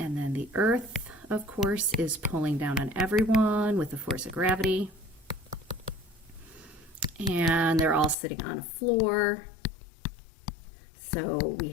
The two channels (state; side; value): drops out; right; at 8.2 s